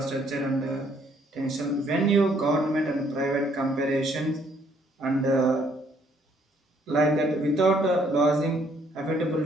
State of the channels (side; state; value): both; normal; correlation 0.66